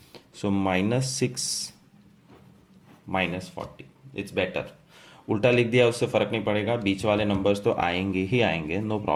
So -6 -40. It's better. उल्टा लिख दिया उससे फर्क नहीं पड़ेगा. बीच वाले नंबर्स तो आएंगे ही आएंगे, no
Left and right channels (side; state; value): both; identical; correlation 1.00